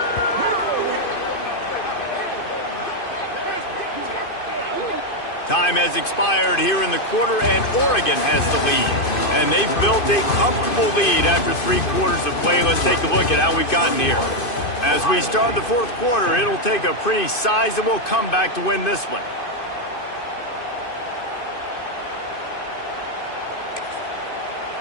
Time has expired here in the quarter, and Oregon has the lead. And they've built a comfortable lead after 3 quarters of play. Let's take a look at how we've gotten here. As we start the 4th quarter, it'll take a pretty sizable comeback to win this one.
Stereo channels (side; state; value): right; late; 2.5 ms